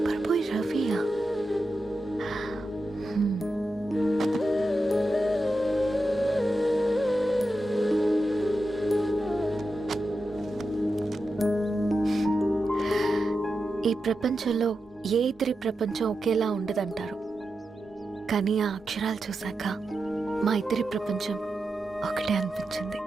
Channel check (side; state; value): both; normal; correlation 0.89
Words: బాయ్ రవియా? ఈ ప్రపంచంలో ఏ ఇద్దరి ప్రపంచం ఒకేలా ఉండదంటారు, కానీ ఆ అక్షరాలు చూశాక మా ఇద్దరి ప్రపంచం ఒకటే అనిపించింది.